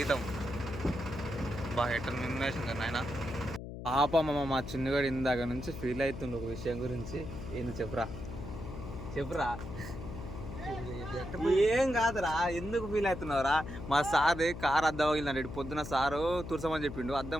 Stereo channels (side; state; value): left; noise; hum, 9 dB below the sound